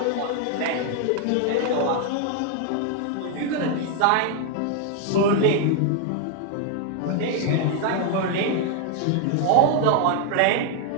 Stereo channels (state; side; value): different; both; correlation 0.00